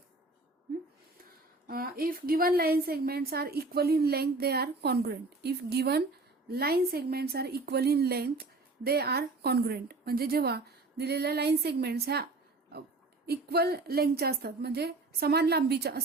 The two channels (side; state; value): left; quieter; 3.3 dB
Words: If given line segments are equal in length, they are congruent. If given line segments are equal in length, they are congruent. म्हणजे जेव्हा दिलेल्या लाईन सेगमेंट्स ह्या इक्वल लेंथच्या असतात म्हणजे समान लांबीच्या